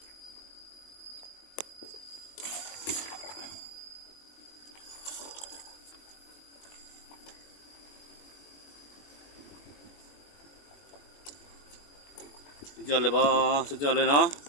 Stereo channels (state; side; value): late; right; 21 ms